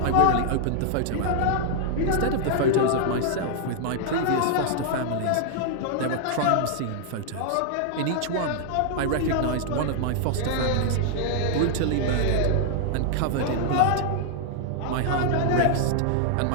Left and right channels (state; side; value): different; both; correlation 0.00